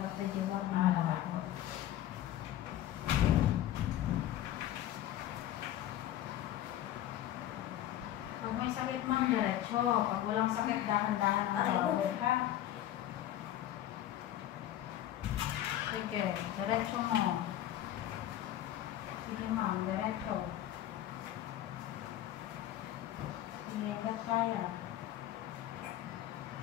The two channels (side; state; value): right; quieter; 12.6 dB